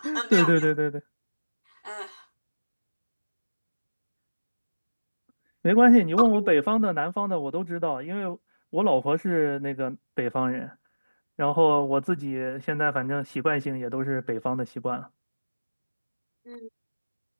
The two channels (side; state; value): both; inverted; correlation -1.00